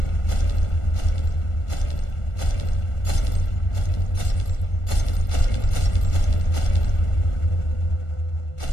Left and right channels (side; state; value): right; late; 1.4 ms